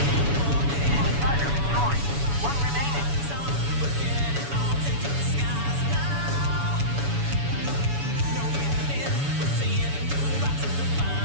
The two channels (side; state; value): left; late; 7.1 ms